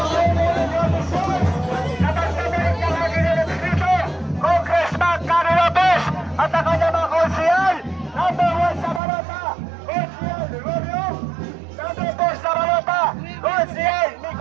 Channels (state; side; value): drops out; left; at 9.0 s